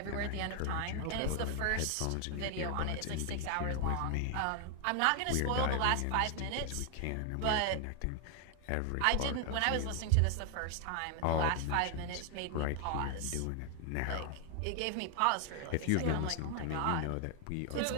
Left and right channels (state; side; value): different; both; correlation 0.00